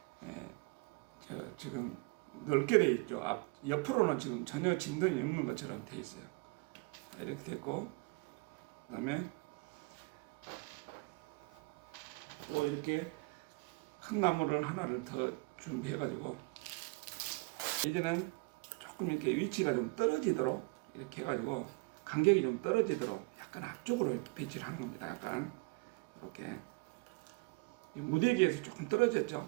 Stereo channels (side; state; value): left; quieter; 27.9 dB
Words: 지금 넓게 돼 있죠. 옆으로는 지금 전혀 진동이 없는 것처럼 돼 있어요. 이렇게 됐고, 그다음에 또 이렇게 큰 나무를 하나를 더 준비해가지고, 이제는 조금 이렇게 위치가 좀 떨어지도록 이렇게 해가지고 간격이 좀 떨어지도록 약간 앞쪽으로 이렇게 배치를 하는 겁니다. 약간 이렇게 무대기에서 조금